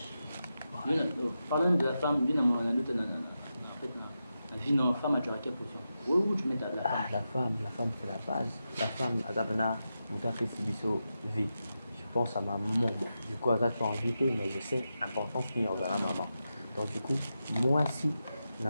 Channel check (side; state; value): both; inverted; correlation -0.89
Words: Parlons de la femme, la vie de la femme, tu as quelle position? Où tu mets la femme? La femme c'est la base. La femme, vie. Je pense à ma maman. Du coup, elle a invité, mais je sais l'importance qu'il y a à la maman. Donc, du coup, moi aussi,